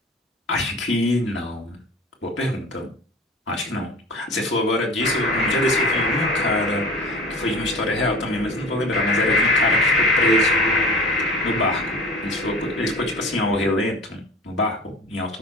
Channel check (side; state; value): both; normal; correlation 0.39